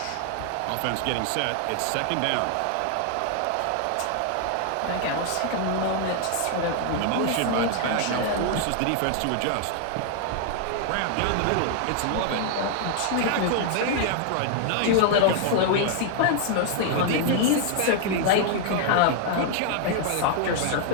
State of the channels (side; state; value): both; different; correlation 0.00